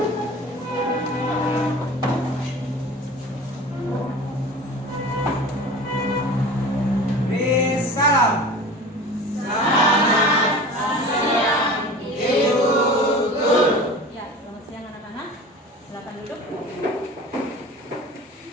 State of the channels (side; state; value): both; normal; correlation 0.38